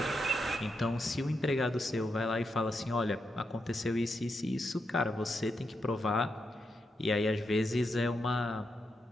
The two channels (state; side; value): normal; both; correlation 0.84